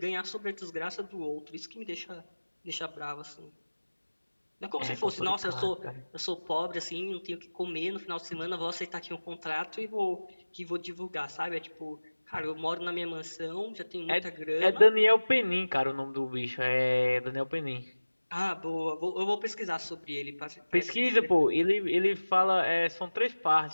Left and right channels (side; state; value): both; inverted; correlation -1.00